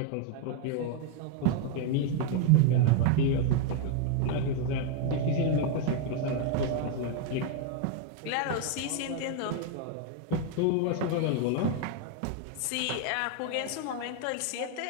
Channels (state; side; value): different; both; correlation 0.01